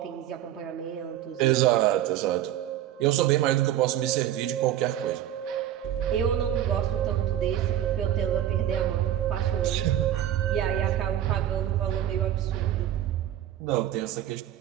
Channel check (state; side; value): quieter; left; 11.7 dB